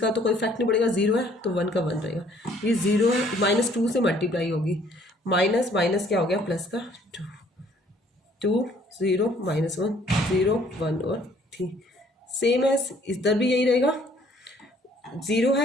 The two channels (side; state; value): both; normal; correlation 0.61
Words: तो कोई इफेक्ट नहीं पड़ेगा, 0 है तो 1 का 1 रहेगा, ये 0 है -2 से मल्टीप्लाई होगी, माइनस माइनस क्या हो गया प्लस का 2 0 -1 0 1 और 3। सेम है इधर भी यही रहेगा, 0